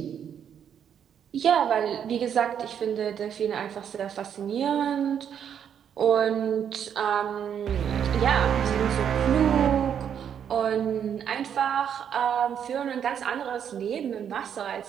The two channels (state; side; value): quieter; left; 8.5 dB